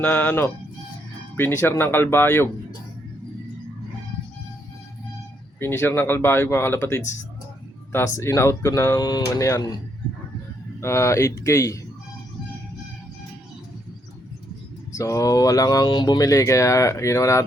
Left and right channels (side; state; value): both; normal; correlation 0.74